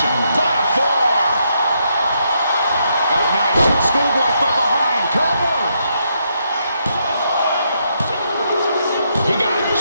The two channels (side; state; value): both; inverted; correlation -0.78